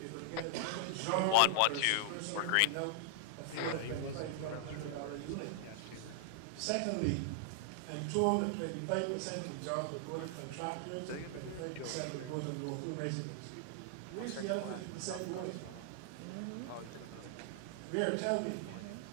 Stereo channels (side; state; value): both; different; correlation -0.01